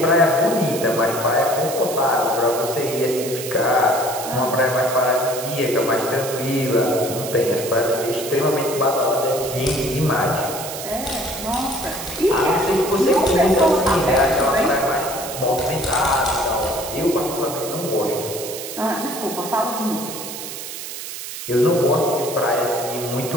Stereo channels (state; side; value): noise; right; hiss, 9 dB below the sound